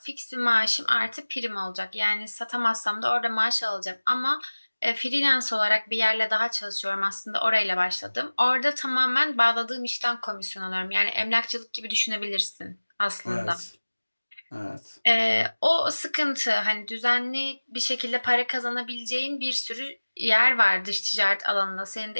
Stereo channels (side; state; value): both; inverted; correlation -1.00